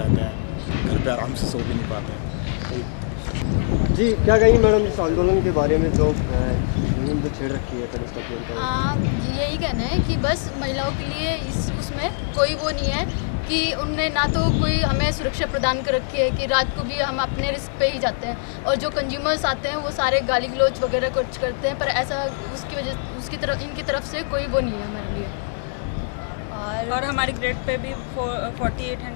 हैं, घर पे आराम से सो भी नहीं पाते हैं। जी, क्या कहेंगी मैडम इस आंदोलन के बारे में जो मुहिम जो छेड़ रखी है कनिष्ठ अभियंता? यही कहना है कि बस महिलाओं के लिए उसमें कोई वो नहीं है कि उनने ना तो कोई हमें सुरक्षा प्रदान कर रखी है कि रात को भी हम अपने रिस्क पे ही जाते हैं, और जो कंज्यूमर्स आते हैं वो सारे गाली गलौज वगैरह कुछ करते हैं, पर ऐसा इनकी तरफ से कोई वो नहीं है हमारे लिए। और हमारी ग्रेड पे भी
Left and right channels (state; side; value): silent; right; digital silence